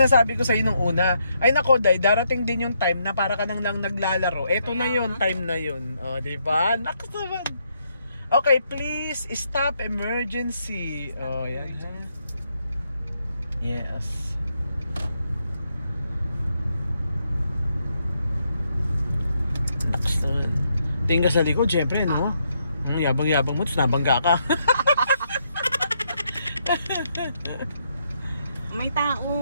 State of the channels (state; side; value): inverted; both; correlation -0.77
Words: ko sa'yo nung una. Ay nako, Day, darating din yung time na para ka nang naglalaro. Eto na yun, time na yun. O, diba? Nakas naman. Okay, please, stop emergency. O, yan. Yes. Nakas naman. Tingin ka sa likod, syempre, no? Yabang-yabang mo, tapos nabangga ka. May